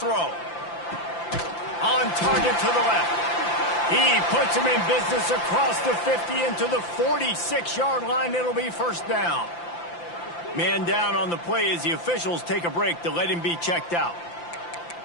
On target to the left. He puts him in business across the 50 into the 46-yard line. It'll be first down. Man down on the play as the officials take a break to let him be checked out.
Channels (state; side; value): late; right; 5.8 ms